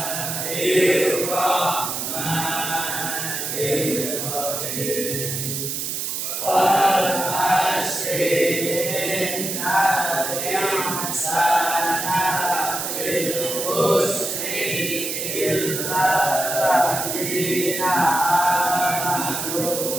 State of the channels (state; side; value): noise; right; hiss, 3 dB below the sound